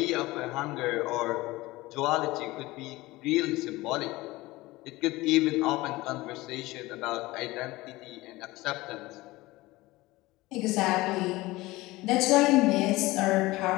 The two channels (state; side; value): quieter; right; 19.8 dB